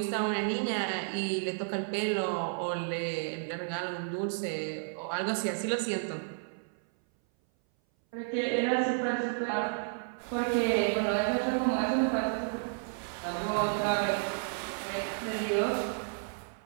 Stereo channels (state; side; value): silent; left; 57 dB below the other